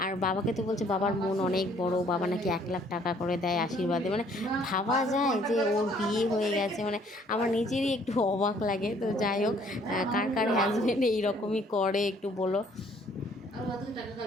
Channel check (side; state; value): both; normal; correlation 0.61